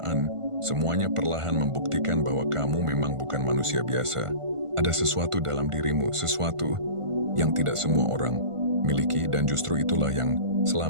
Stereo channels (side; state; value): left; late; 1.5 ms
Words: semuanya perlahan membuktikan bahwa kamu memang bukan manusia biasa. Ada sesuatu dalam dirimu, sesuatu yang tidak semua orang miliki, dan justru itulah yang